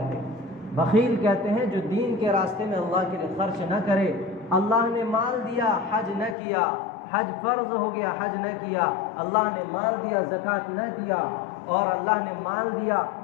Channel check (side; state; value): right; drops out; at 6.4 s